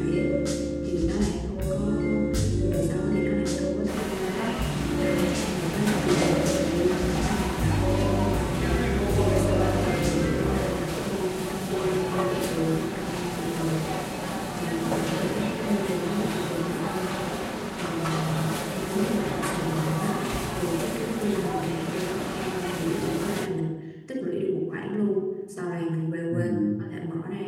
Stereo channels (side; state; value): both; identical; correlation 1.00